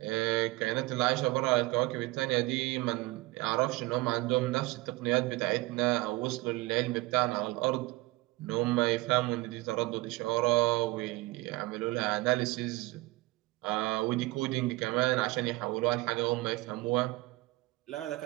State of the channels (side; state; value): left; quieter; 20.9 dB